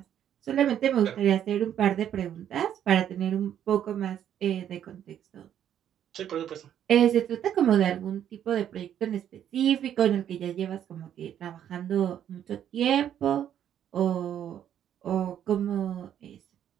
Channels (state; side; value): quieter; left; 10.1 dB